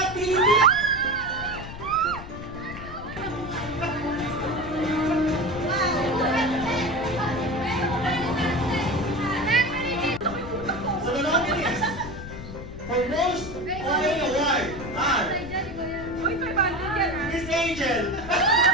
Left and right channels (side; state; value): left; noise; rumble, 12 dB below the sound